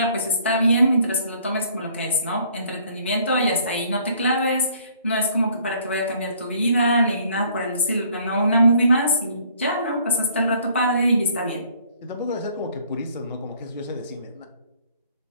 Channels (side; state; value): both; inverted; correlation -0.60